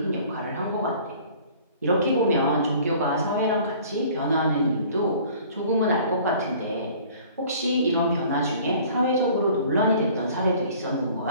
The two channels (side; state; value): both; inverted; correlation -0.51